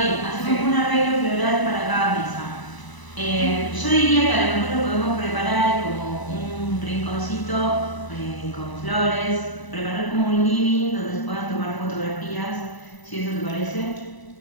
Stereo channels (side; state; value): right; late; 1.0 ms